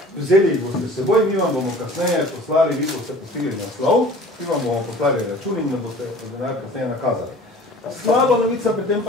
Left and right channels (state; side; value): normal; both; correlation 0.46